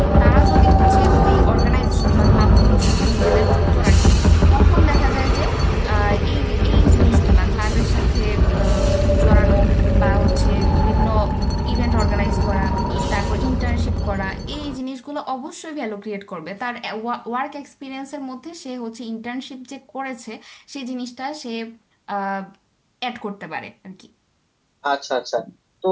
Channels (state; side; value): identical; both; correlation 1.00